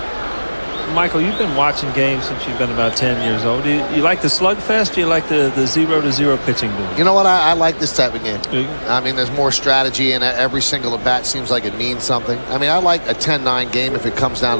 Michael, you've been watching games since you've been about 10 years old. Do you like the slugfest? Do you like the 0-0 pitching duel? You know what? I like this type of game. I mean, there's more strategy, and every single at bat seems like it means something. I mean, I like a 10-9 game if it comes down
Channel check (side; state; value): both; inverted; correlation -1.00